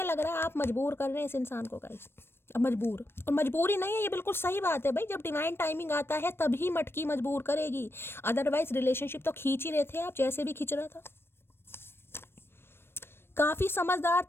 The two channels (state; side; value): late; right; 0.11 ms